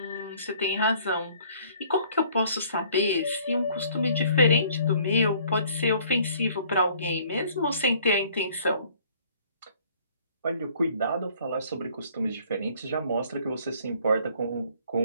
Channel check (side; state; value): both; inverted; correlation -0.58